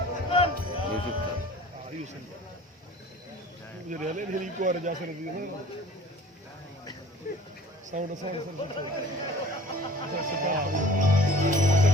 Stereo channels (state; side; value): normal; both; correlation 0.47